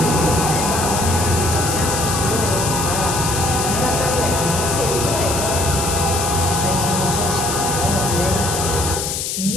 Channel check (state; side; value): noise; left; hiss, 3 dB below the sound